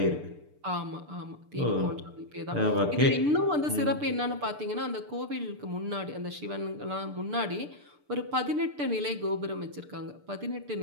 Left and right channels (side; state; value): left; late; 6.8 ms